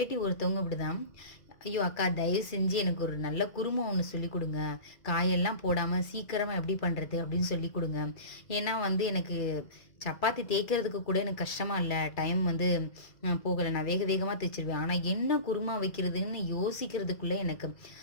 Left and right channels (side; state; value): right; late; 2.0 ms